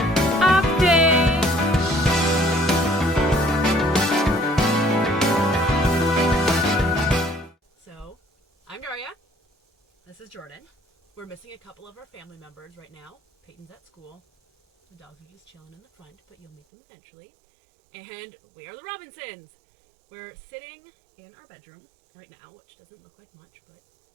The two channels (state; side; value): drops out; left; at 16.6 s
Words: Update! So, I'm Daria. This is Jordan. We're missing a couple of our family members right now. Peyton's at school. The dogs are just chilling in the front, but you'll meet them eventually. And we are the Robinsons. We're sitting in our bedroom right now, which doesn't look like much, but